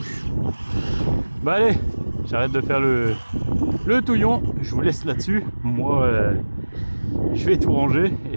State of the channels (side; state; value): both; inverted; correlation -1.00